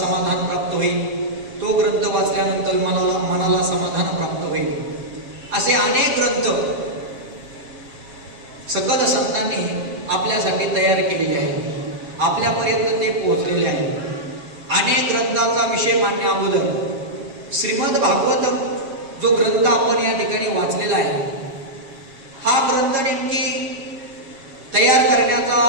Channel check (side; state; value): left; late; 7.4 ms